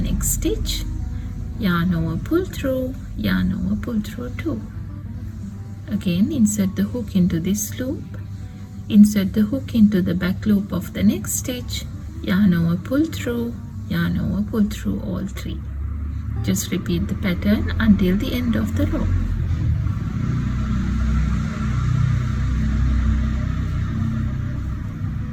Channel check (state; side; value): identical; both; correlation 1.00